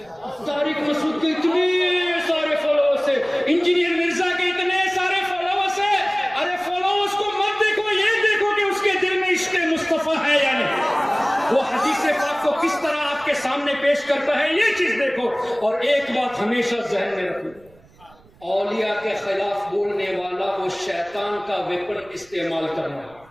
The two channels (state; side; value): noise; right; rumble, 28 dB below the sound